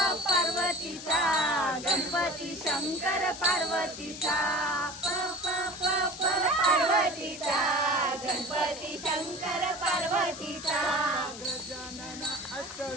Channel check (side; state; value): left; noise; hiss, 12 dB below the sound